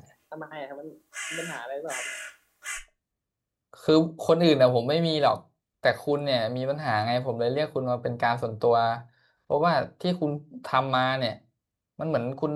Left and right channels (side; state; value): both; identical; correlation 1.00